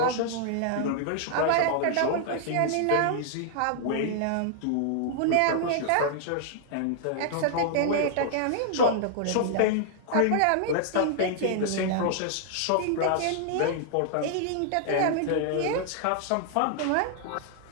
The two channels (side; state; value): both; different; correlation -0.01